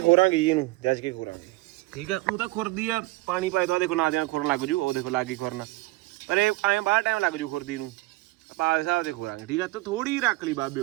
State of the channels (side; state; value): left; quieter; 20.7 dB